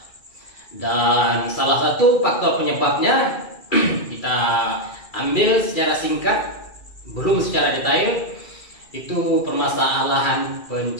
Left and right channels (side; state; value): right; late; 2.4 ms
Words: Dan salah satu faktor penyebabnya kita ambil secara singkat, belum secara detail, itu permasalahan